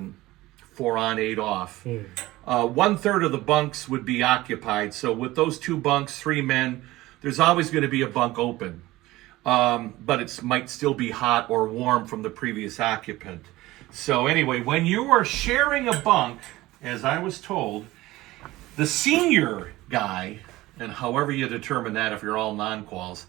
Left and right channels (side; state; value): left; quieter; 18.1 dB